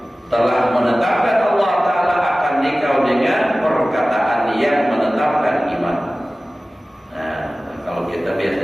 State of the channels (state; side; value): normal; both; correlation 0.97